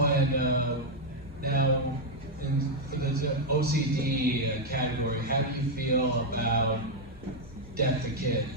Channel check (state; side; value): normal; both; correlation 0.01